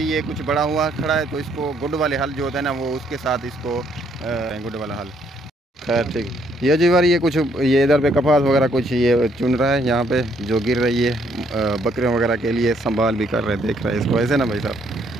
ये कुछ बड़ा हुआ खड़ा है। तो इसको गुड वाले हल जो होता है ना, वो उसके साथ इसको गुड वाला हल। खैर ठीक, ये जी बार ये कुछ ये इधर पे कपास वगैरह कुछ ये चुन रहा है यहाँ पे, जो गिर रही है बकरियों वगैरह के लिए संभाल भी कर रहे हैं, देख रहे हैं इसको ऐसे ना भाई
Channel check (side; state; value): both; normal; correlation 0.69